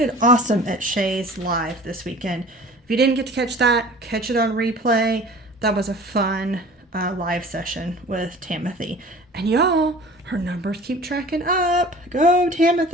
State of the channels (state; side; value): normal; both; correlation 0.44